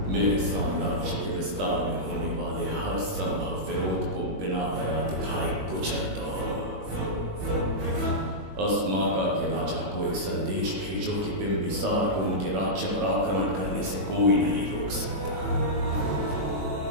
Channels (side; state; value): left; late; 21 ms